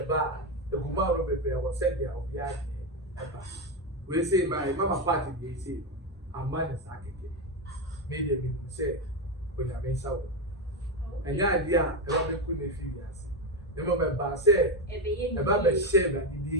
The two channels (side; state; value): both; normal; correlation 0.11